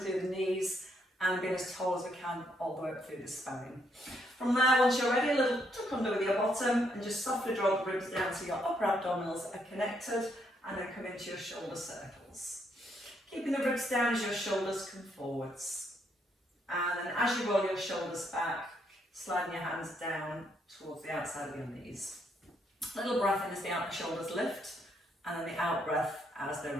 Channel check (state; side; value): normal; both; correlation 0.74